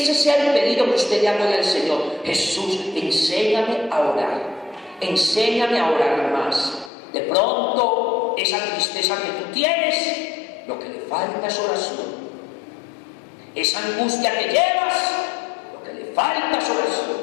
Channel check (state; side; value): drops out; right; at 6.9 s